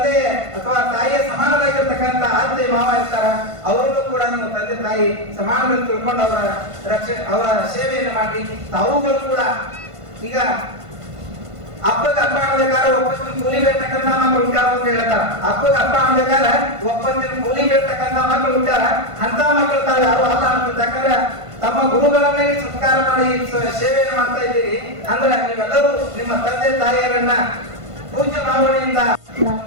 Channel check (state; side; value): late; left; 1.5 ms